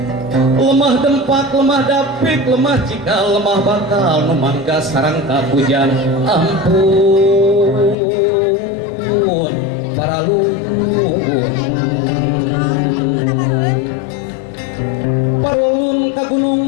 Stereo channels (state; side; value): drops out; right; at 8.0 s